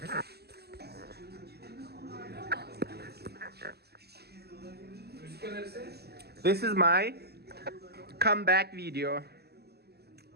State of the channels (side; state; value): left; late; 0.47 ms